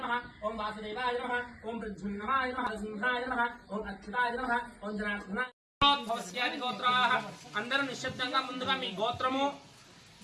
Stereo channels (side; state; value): both; identical; correlation 1.00